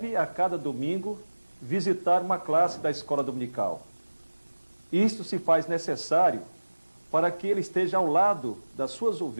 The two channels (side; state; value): both; inverted; correlation -1.00